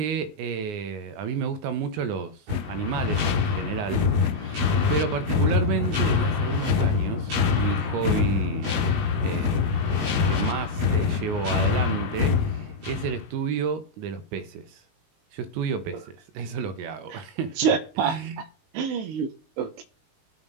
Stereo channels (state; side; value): late; left; 19 ms